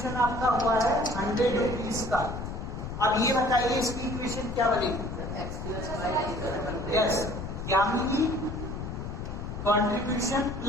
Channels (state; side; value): noise; left; rumble, 6 dB below the sound